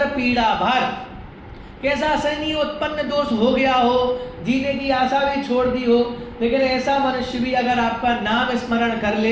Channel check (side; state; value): both; identical; correlation 1.00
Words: पीड़ा भार, कैसा असहनीय उत्पन्न दोष हो गया हो, जीने की आशा भी छोड़ दी हो, लेकिन ऐसा मनुष्य भी अगर आपका नाम स्मरण कर